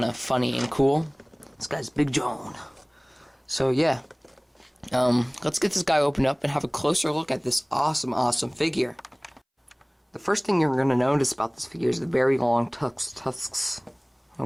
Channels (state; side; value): identical; both; correlation 1.00